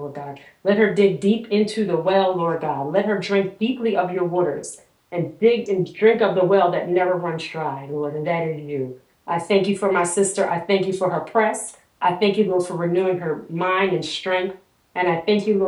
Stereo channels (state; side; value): identical; both; correlation 1.00